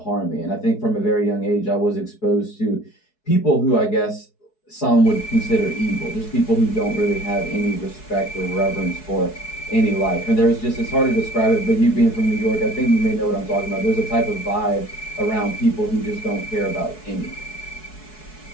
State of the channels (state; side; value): late; right; 4.7 ms